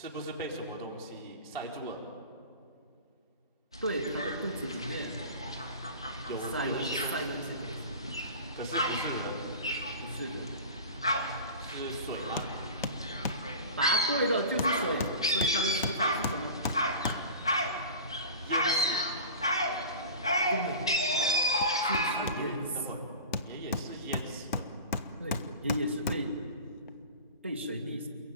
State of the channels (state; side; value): inverted; both; correlation -0.36